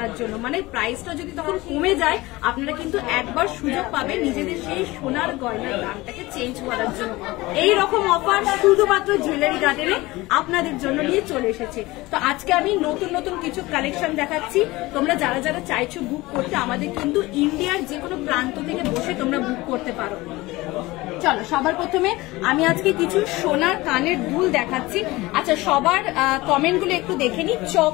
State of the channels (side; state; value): right; quieter; 20.4 dB